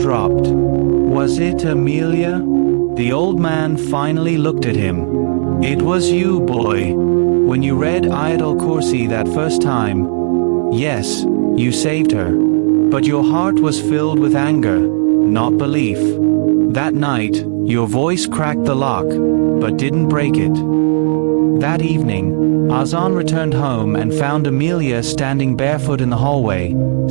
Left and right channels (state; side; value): silent; left; 68 dB below the other